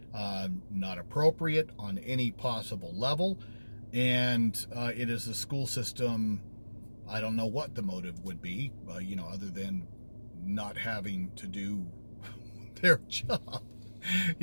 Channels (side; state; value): both; inverted; correlation -1.00